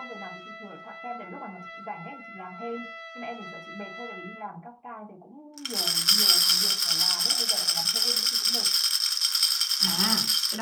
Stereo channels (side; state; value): both; identical; correlation 1.00